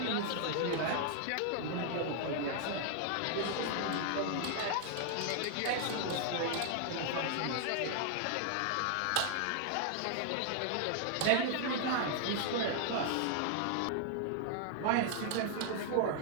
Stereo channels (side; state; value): both; different; correlation 0.00